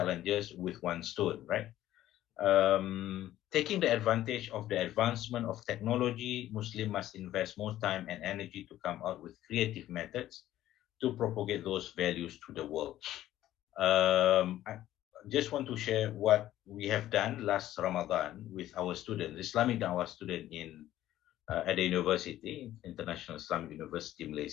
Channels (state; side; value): quieter; right; 13.6 dB